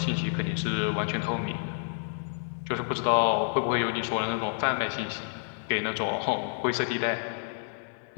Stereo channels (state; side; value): silent; right; digital silence